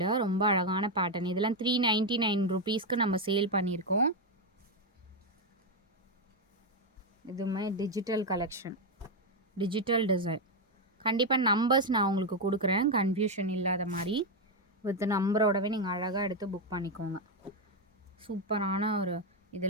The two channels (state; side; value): normal; both; correlation 0.05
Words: ரொம்ப அழகான பேட்டர்ன். இதெல்லாம் 399 ருபீஸ்க்கு நம்ம சேல் பண்ணியிருக்கோம். இதுவுமே டிஜிட்டல் கலெக்ஷன், டிஜிட்டல் டிசைன். கண்டிப்பாக நம்பர்ஸ் நான் உங்களுக்கு கொடுக்குறேன், கன்ஃபியூஷன் இல்லாத மாதிரி. வித் நம்பரோடவே நீங்கள் அழகாக எடுத்து புக் பண்ணிக்கோங்க. சூப்பரான ஒரு